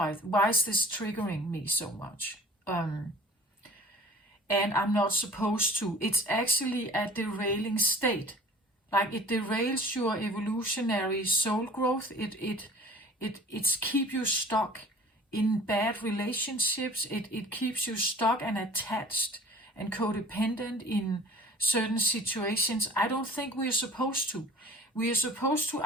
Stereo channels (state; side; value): normal; both; correlation 0.45